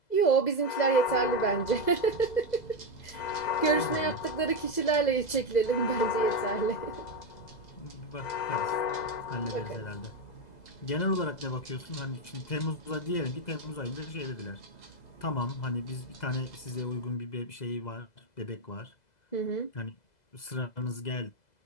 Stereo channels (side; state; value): right; late; 2.0 ms